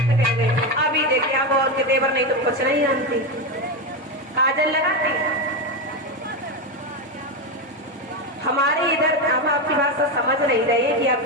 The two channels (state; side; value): normal; both; correlation 0.13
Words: कह गए। अभी देखिए अब और के देवर नहीं तो कुछ नहीं जानती, काजल लगाती। हमारे इधर हम आपकी भाषा समझ नहीं रहे हैं कि आप